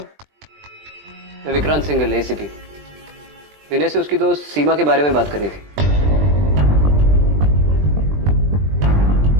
मैं विक्रांत सिंघल, एसीपी। विनय से उसकी दोस्त सीमा के बारे में बात करनी थी।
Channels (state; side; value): late; left; 20 ms